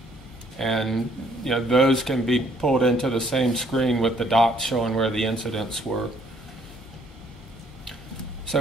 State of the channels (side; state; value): both; normal; correlation 0.65